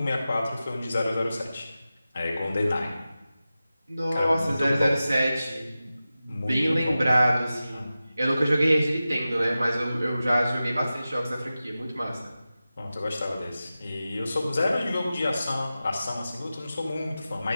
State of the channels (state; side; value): inverted; both; correlation -0.94